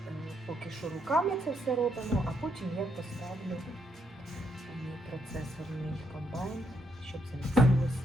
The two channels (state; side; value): normal; both; correlation 0.77